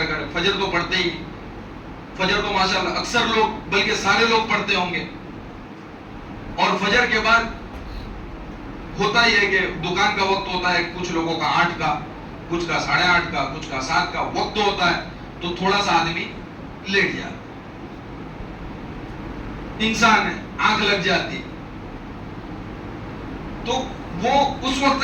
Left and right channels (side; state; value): both; identical; correlation 1.00